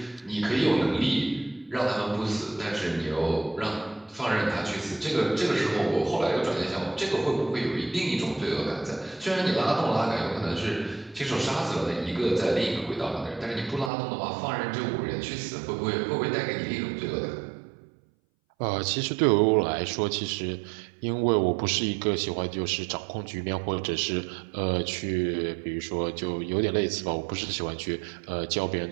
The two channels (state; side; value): drops out; left; at 13.9 s